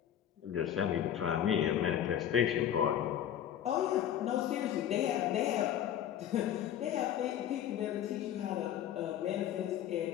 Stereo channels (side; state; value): right; quieter; 10.4 dB